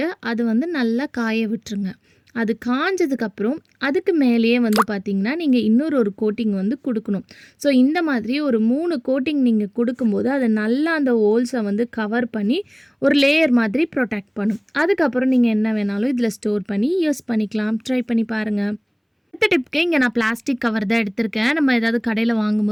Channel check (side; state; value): both; identical; correlation 1.00